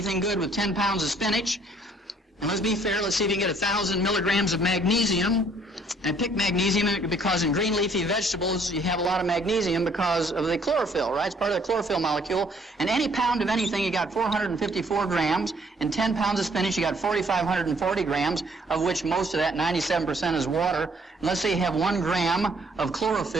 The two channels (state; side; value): normal; both; correlation 0.63